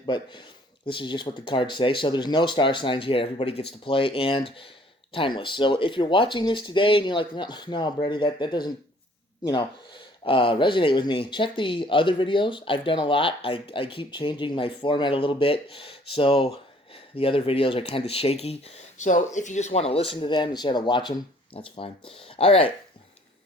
but this is just what the cards say. So there's no star signs here. Everybody gets to play and timeless. So if you're watching this today and you're like, no, Brady, that doesn't, you know, resonate with me, check the other videos. I've done a lot. I keep changing my format a little bit. So the other videos are kind of shaky. So if you just want to listen to them instead of watch them, that's fine. All right,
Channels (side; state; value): both; normal; correlation 0.58